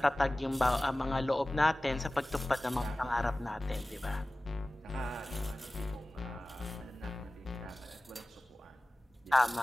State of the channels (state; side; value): normal; both; correlation 0.97